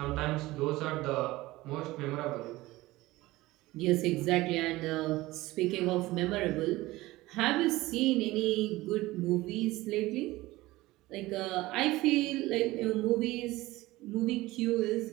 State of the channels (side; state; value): left; quieter; 18.8 dB